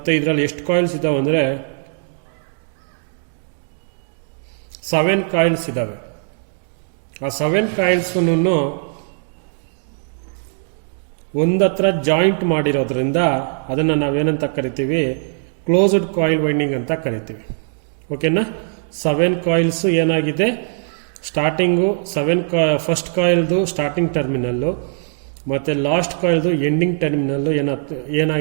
ಇದರಲ್ಲಿ ಎಷ್ಟು ಕಾಯಿಲ್ಸ್ ಇದ್ದಾವೆ ಅಂದರೆ 7 ಕಾಯಿಲ್ಸ್ ಇದ್ದಾವೆ. ಆ 7 ಕಾಯಿಲ್ಸೂ ಒಂದತ್ರ ಜಾಯಿಂಟ್ ಮಾಡಿರೋದ್ರಿಂದ ಅದನ್ನು ನಾವೇನಂತ ಕರಿತೀವಿ, ಕ್ಲೋಸ್ಡ್ ಕಾಯಿಲ್ ವೈಂಡಿಂಗ್ ಅಂತ ಕರಿತೀವಿ. ಓಕೆನಾ? 7 ಕಾಯಿಲ್ಸ್ ಏನಾಗಿದೆ, ಸ್ಟಾರ್ಟಿಂಗು ಫಸ್ಟ್ ಕಾಯಿಲ್ದು ಸ್ಟಾರ್ಟಿಂಗ್ ಟರ್ಮಿನಲ್ಲು ಮತ್ತು ಲಾಸ್ಟ್ ಕಾಯಿಲ್ದು ಎಂಡಿಂಗ್ ಟರ್ಮಿನಲ್ಲು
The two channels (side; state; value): left; silent; 66 dB below the other